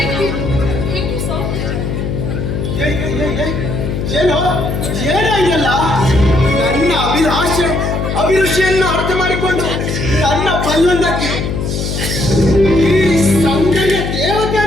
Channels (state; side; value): noise; left; hum, 3 dB below the sound